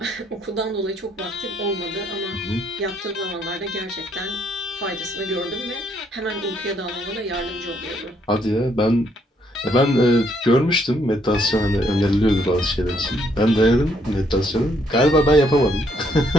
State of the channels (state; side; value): normal; both; correlation 0.70